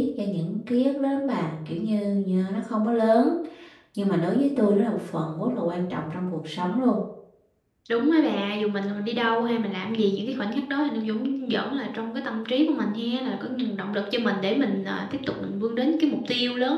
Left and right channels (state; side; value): identical; both; correlation 1.00